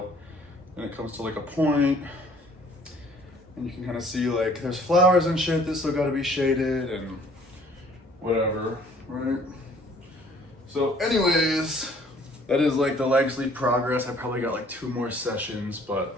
And it comes to like a point. And you can kind of see like there's flowers and shit that still gotta be shaded and whatever, right? So anyways, that is like the leg sleeve progress. I probably got like 2 more sessions, but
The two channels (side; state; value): both; normal; correlation 0.57